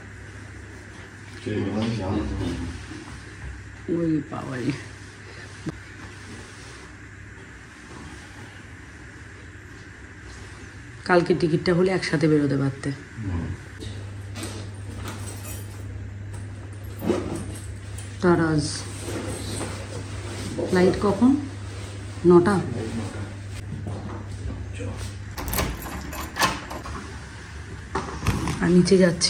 ওই বাবাই, কালকে টিকিটটা হলে একসাথে বেরোতে পারতে। তারাজ ফ্লাইট কখন? 9টা। আর নিচে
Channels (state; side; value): identical; both; correlation 1.00